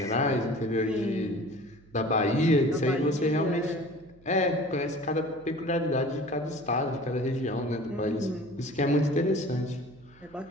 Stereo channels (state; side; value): noise; right; hum, 26 dB below the sound